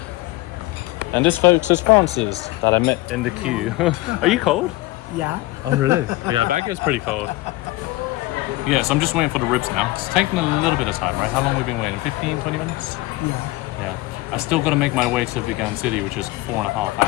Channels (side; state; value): right; quieter; 19.6 dB